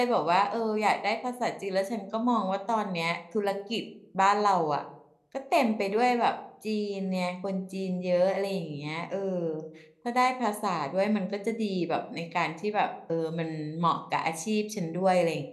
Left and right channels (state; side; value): identical; both; correlation 1.00